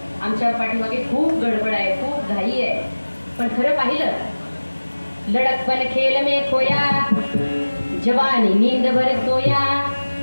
आमच्या पाठीमागे खूप गडबड आहे, खूप घाई आहे. पण खरं पाहिलं लड़कपन खेल में खोया, जवानी नींद भर सोया,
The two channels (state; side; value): inverted; both; correlation -1.00